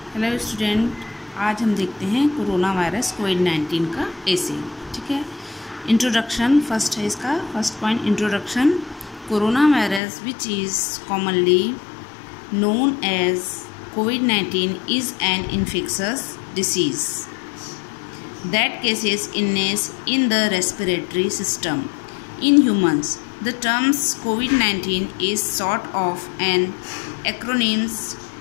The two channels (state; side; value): drops out; right; at 10.0 s